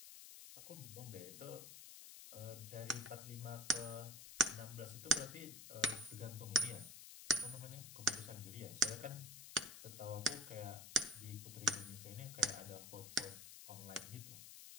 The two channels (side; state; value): left; noise; hiss, 12 dB below the sound